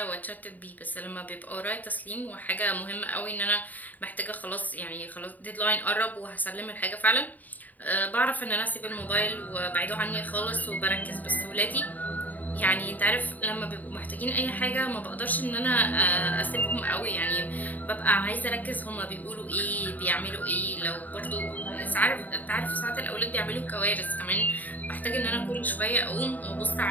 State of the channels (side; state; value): right; late; 0.081 ms